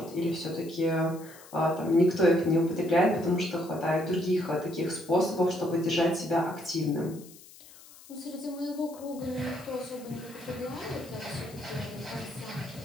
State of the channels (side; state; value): left; noise; hiss, 21 dB below the sound